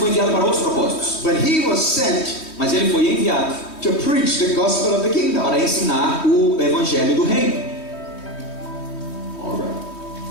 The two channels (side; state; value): right; late; 3.2 ms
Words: enviado para outros propósitos. but he was sent Mas ele foi enviado to preach the gospel of the kingdom. para ensinar o evangelho do reino. All right.